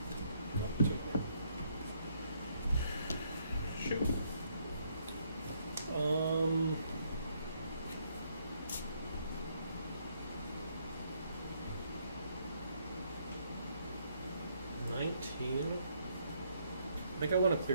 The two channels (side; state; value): both; inverted; correlation -0.71